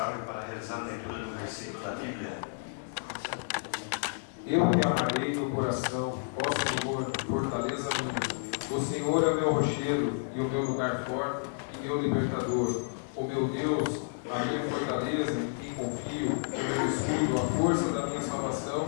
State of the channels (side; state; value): right; silent; 57 dB below the other